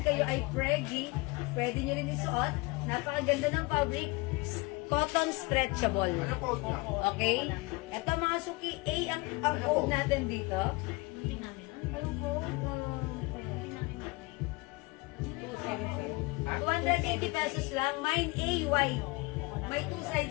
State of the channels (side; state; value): right; quieter; 24.9 dB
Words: kayo ay preggy, pwede nyo rin isuot. Napakaganda ng fabric. Cotton stretchable. Okay? Ito mga suki, A ang code natin dito. Ano code? 280 pesos lang. Mine A white. May 2